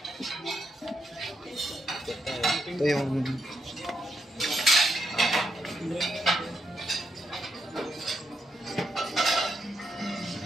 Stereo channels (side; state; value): both; normal; correlation 0.80